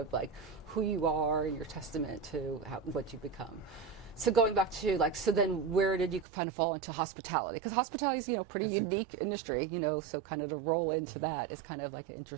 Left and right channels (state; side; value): drops out; left; at 6.2 s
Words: like who you are and your testament to what you become. So going back to so then where did you kind of fall into hospitality? Because hospitality is pretty unique industry. So kind of to roll into that is kind of like an